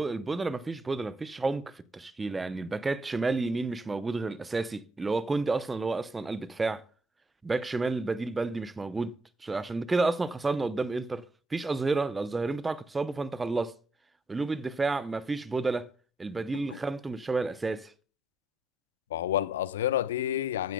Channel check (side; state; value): both; normal; correlation 0.73